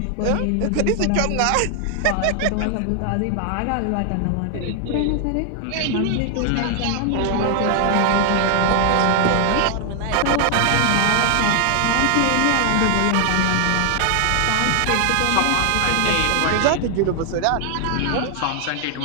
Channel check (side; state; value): both; different; correlation 0.00